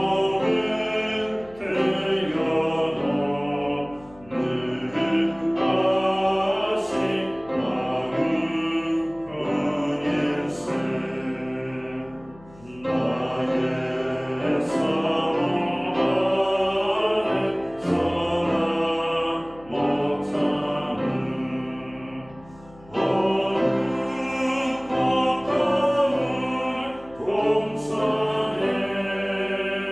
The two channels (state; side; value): noise; left; hum, 23 dB below the sound